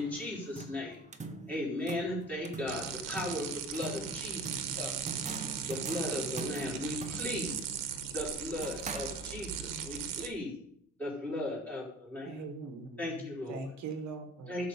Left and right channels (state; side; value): normal; both; correlation 0.41